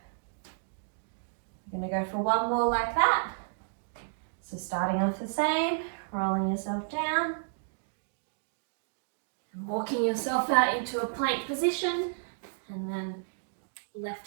We're going to go for one more like that. So starting off the same. Rolling yourself down and walking yourself out into a plank position, and then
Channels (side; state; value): left; silent; digital silence